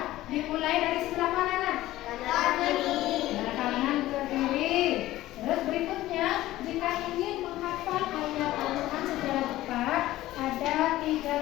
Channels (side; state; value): right; quieter; 15.9 dB